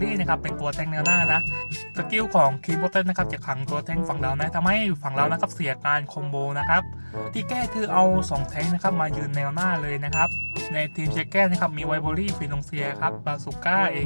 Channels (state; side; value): inverted; both; correlation -1.00